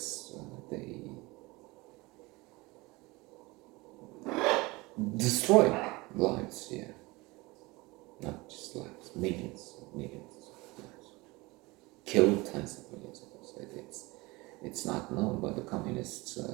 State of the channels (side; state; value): left; quieter; 23.0 dB